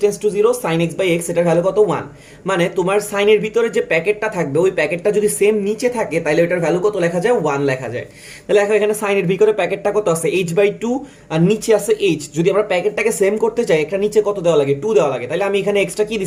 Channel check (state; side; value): identical; both; correlation 1.00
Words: to 0 sin x by x, এটার ভ্যালু কত 1। মানে তোমার সাইনের ভিতরে যে প্যাকেটটা থাকবে ওই প্যাকেটটা যদি সেম নিচে থাকে তাহলে ওটার ভ্যালু কত লেখা যায়, 1 লেখা যায়। তাহলে দেখো এখানে সাইনের ভিতরে প্যাকেটটা কত আছে, h বাই 2, আর নিচে আছে h। যদি আমরা প্যাকেটটাকে সেম করতে চাই একটা নিচে কত দেওয়া লাগে, 2 দেওয়া লাগে। তাহলে আমি এখানে এক্সট্রা কি